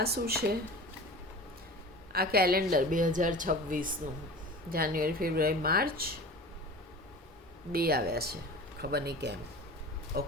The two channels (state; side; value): normal; both; correlation 0.36